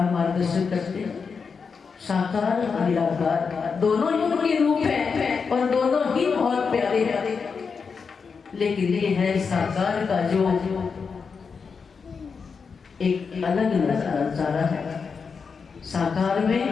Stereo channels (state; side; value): quieter; right; 5.5 dB